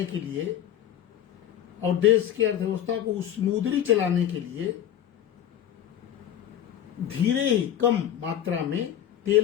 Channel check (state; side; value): quieter; right; 10.6 dB